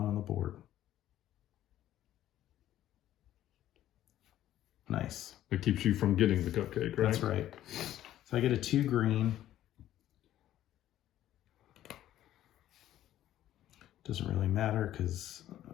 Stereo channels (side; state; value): right; quieter; 12.8 dB